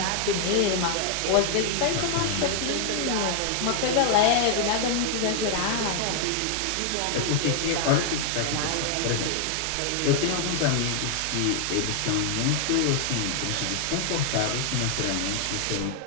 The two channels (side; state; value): both; different; correlation 0.00